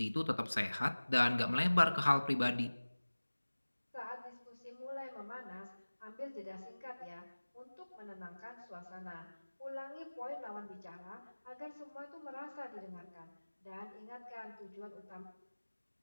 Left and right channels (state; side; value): inverted; both; correlation -1.00